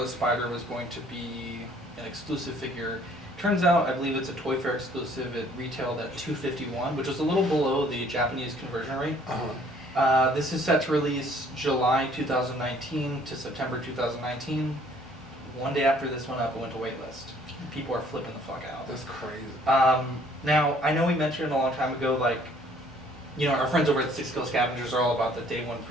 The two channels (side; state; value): both; normal; correlation 0.59